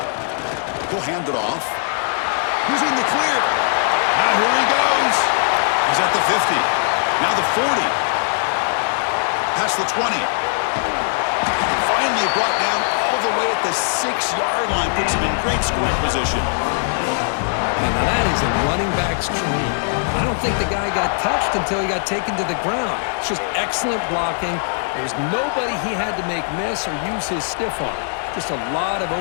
He'll hand it off. He's in the clear. Now here he goes. He's at the 50. Now the 40. Past the 20. Finally brought down all the way at the 6-yard line. Puts him in great scoring position. And now that is a running back's dream. I don't think the guy got touched until he got taken to the ground. It's just excellent blocking. There's nobody he had to make miss or use his stiff arm. Just a lot of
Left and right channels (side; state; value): right; silent; 56 dB below the other